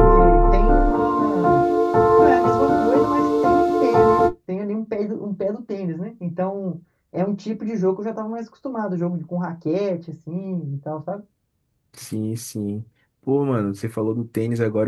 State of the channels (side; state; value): both; identical; correlation 1.00